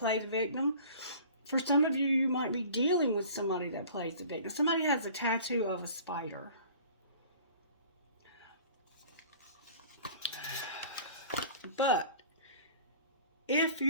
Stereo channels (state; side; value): inverted; both; correlation -0.46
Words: the victim. For some of you, you might be dealing with somebody that plays the victim. Somebody has a tattoo of a spider. But if